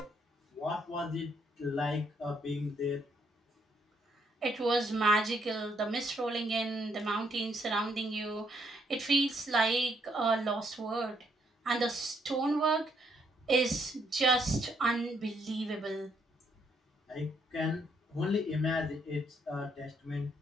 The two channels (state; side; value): normal; both; correlation 0.73